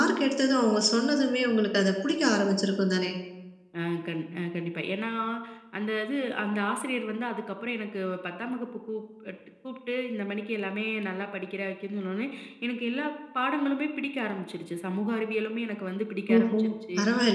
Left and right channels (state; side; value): identical; both; correlation 1.00